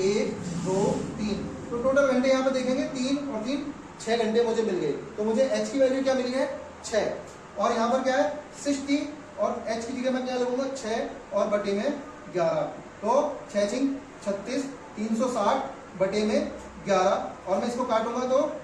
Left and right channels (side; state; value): both; identical; correlation 1.00